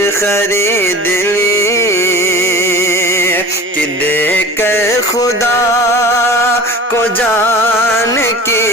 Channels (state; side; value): normal; both; correlation 0.39